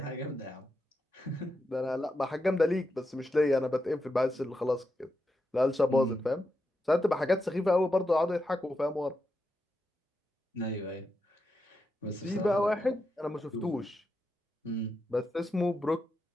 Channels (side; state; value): both; normal; correlation 0.86